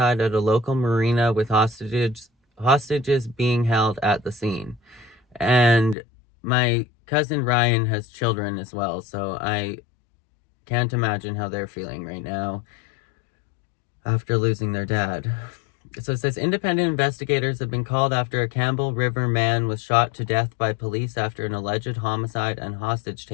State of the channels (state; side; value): drops out; right; at 6.0 s